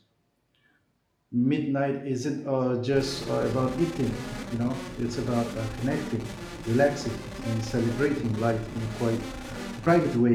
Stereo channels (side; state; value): both; identical; correlation 1.00